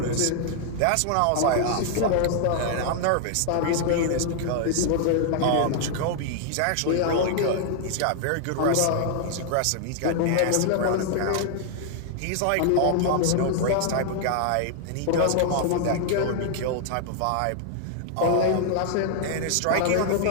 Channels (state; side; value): different; both; correlation 0.00